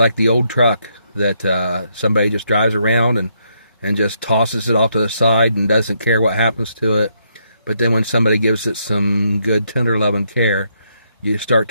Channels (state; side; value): inverted; both; correlation -0.75